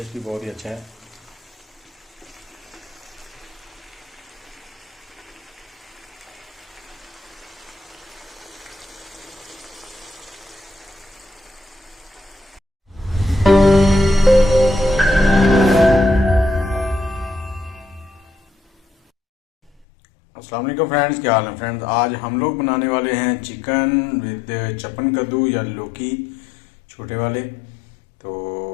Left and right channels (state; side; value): drops out; right; at 19.9 s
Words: भी बहुत ही अच्छा है। अस्सलाम वालेकुम फ्रेंड्स, क्या हाल है फ्रेंड्स। आज हम लोग बनाने वाले हैं चिकन विद चपन कद्दू या लौकी छोटे वाले। तो